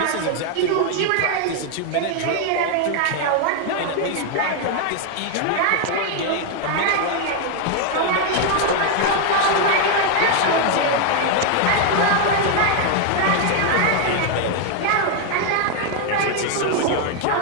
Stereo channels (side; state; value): both; different; correlation 0.01